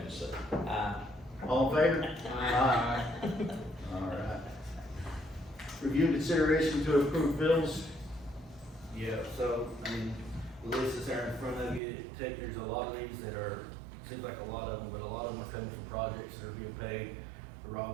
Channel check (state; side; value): drops out; left; at 11.8 s